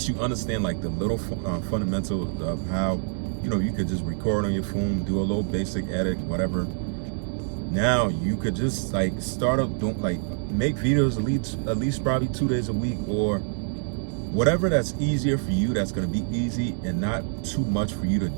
you understand like the little fundamentals of how, you could just record on your phone, do a little basic edit, whatever. Now you could just start up, make videos at least probably 2 days a week, or whatever that's easier for you, that's going to be easy and not too much for you to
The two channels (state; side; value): silent; left; 57 dB below the other